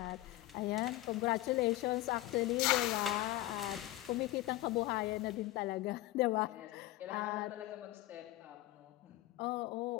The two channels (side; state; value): right; quieter; 17.0 dB